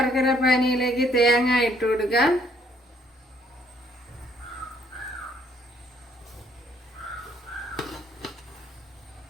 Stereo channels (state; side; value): normal; both; correlation 0.65